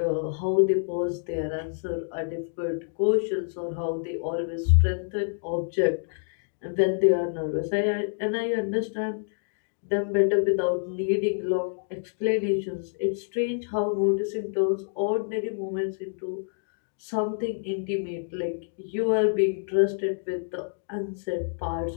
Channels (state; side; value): silent; right; digital silence